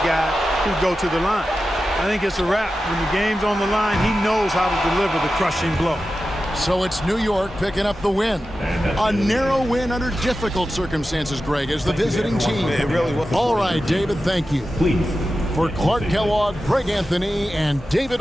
guy who'd go to the line. I think it's a wrap. When the game's on the line, he knows how to deliver the crushing blow. So it's New York picking up the win. A narrow win under difficult circumstances, Greg, as the visiting team. It really was. All right, David, thank you. Please. For Clark Kellogg, Greg Anthony, and David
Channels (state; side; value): normal; both; correlation 0.93